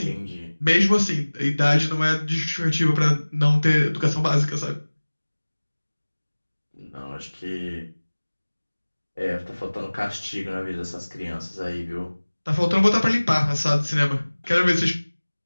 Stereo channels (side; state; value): both; inverted; correlation -1.00